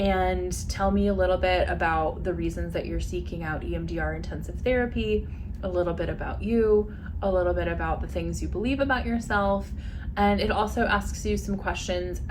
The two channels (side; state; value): both; identical; correlation 1.00